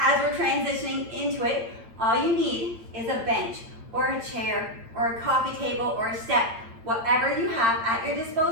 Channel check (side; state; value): left; late; 8.8 ms